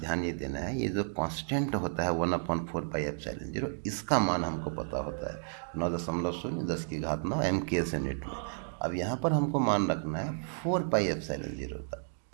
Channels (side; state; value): left; silent; digital silence